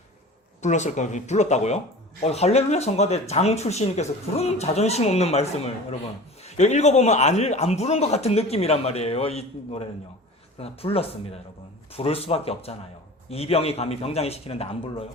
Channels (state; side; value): normal; both; correlation 0.38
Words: 불렀을까요? 불렀다고요? 할렐루야 성가대 장 출신님께서 그런 자존심 없는 말씀을 여러분. 이거 읽어보면 안 부른 것 같은 느낌이란 말이에요. 이 노래는요. 그러나 불렀습니다, 여러분. 부를 수밖에 없잖아요. 이병이 감히 병장이 시키는데 안 불러요?